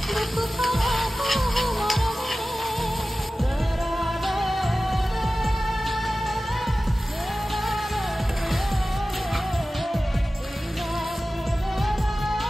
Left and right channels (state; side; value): normal; both; correlation 0.96